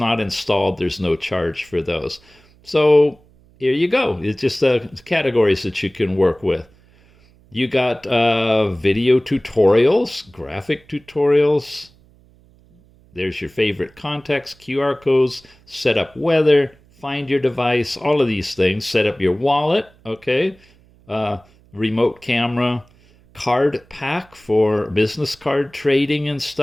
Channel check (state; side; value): noise; right; hum, 29 dB below the sound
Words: installed, there's no charge for those. So here you go. It's just categories that you can work with. You got video tutorials, graphic tutorials. There's your favorite context, QR codes, set up weather, find your device, all of these things. Set up your wallet, okay? Remote camera, card pack for business card trading and